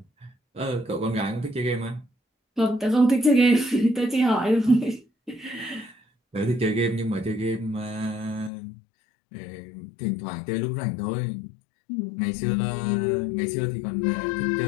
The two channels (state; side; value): drops out; right; at 8.5 s